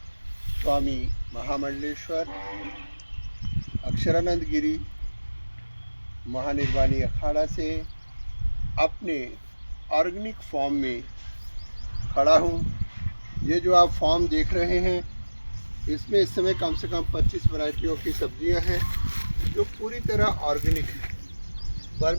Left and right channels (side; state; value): both; inverted; correlation -1.00